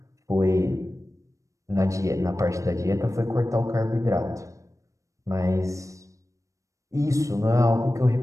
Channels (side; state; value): left; late; 0.15 ms